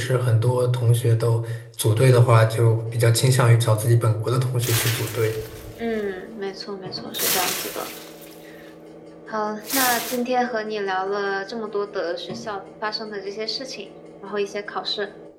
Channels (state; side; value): identical; both; correlation 1.00